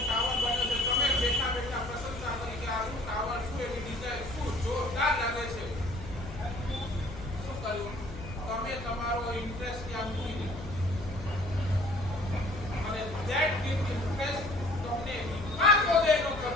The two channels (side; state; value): left; noise; hum, 12 dB below the sound